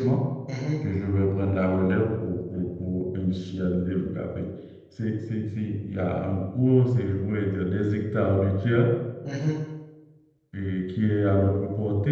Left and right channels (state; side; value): identical; both; correlation 1.00